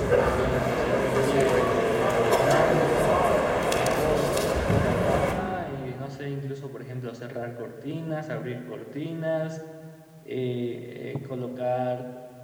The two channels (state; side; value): identical; both; correlation 1.00